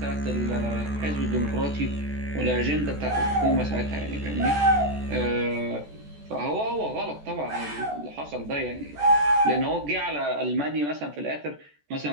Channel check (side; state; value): left; late; 14 ms